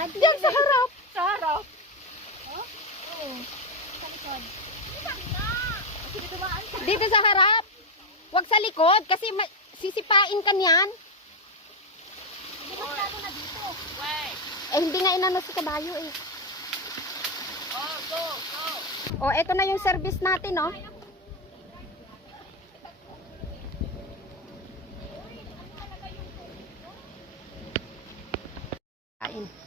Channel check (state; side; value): normal; both; correlation 0.09